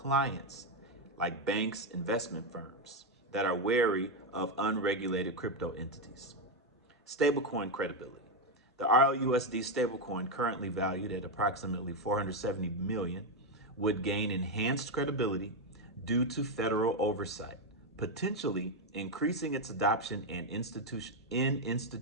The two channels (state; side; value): normal; both; correlation 0.06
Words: like banks, investment firms that are wary of unregulated crypto entities. Stablecoin credibility. The RLUSD stablecoin, currently valued at approximately $470 million, would gain enhanced credibility due to federal oversight, potentially increasing its adoption in